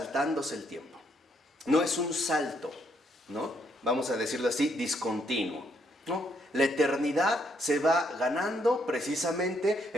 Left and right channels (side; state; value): both; normal; correlation 0.73